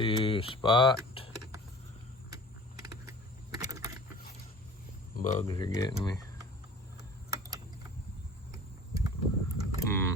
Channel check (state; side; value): normal; both; correlation 0.43